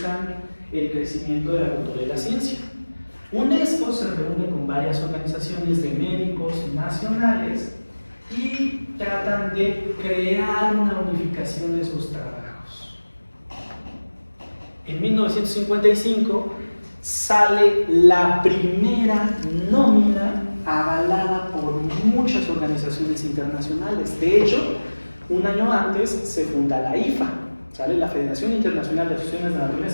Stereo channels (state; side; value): inverted; both; correlation -1.00